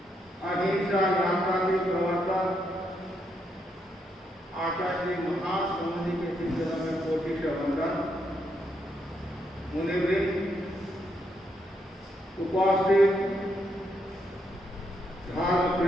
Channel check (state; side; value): normal; both; correlation 0.78